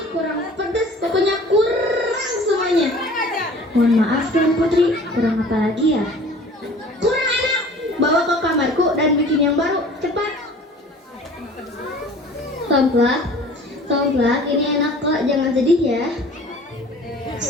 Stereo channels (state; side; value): normal; both; correlation 0.47